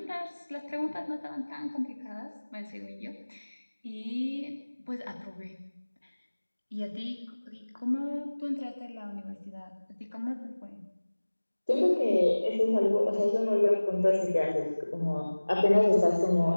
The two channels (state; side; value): inverted; both; correlation -1.00